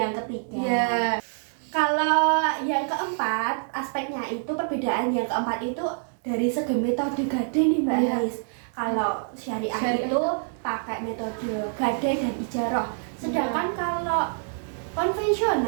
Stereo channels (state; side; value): silent; left; digital silence